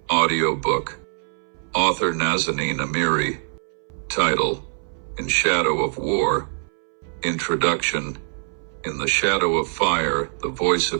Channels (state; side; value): silent; left; 61 dB below the other